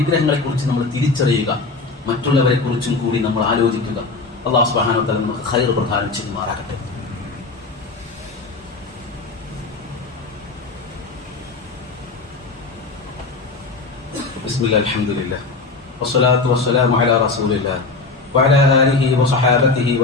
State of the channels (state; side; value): quieter; right; 3.9 dB